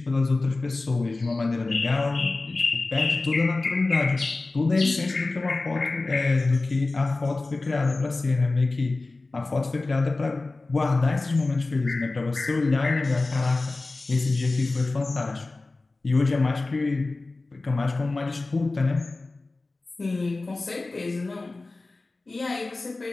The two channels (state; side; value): quieter; right; 3.3 dB